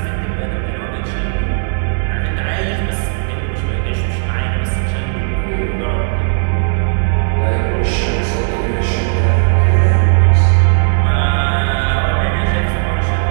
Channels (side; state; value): left; silent; digital silence